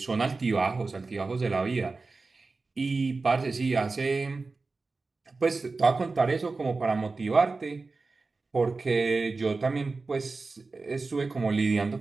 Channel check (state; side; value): quieter; left; 3.8 dB